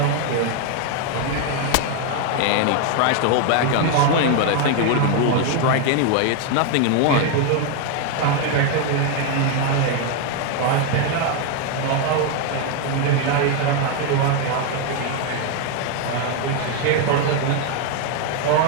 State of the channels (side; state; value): both; different; correlation 0.01